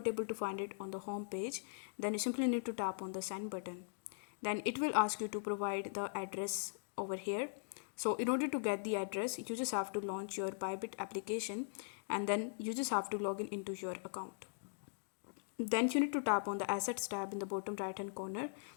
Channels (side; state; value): right; silent; digital silence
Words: able to find it on the home page, then you simply need to tap on the send button. Then it will ask you to provide the address over here. So in order to get the address, you just have to launch your Bybit application and then you just have to log in into your account. Then you need to tap on the assets tab in the bottom right hand corner